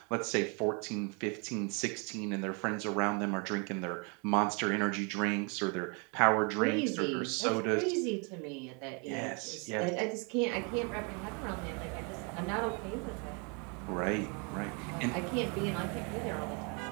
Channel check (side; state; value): left; quieter; 34.3 dB